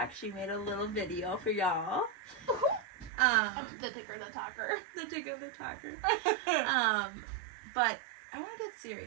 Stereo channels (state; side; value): drops out; left; at 3.1 s